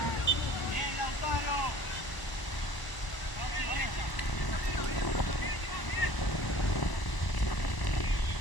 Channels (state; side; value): late; right; 1.0 ms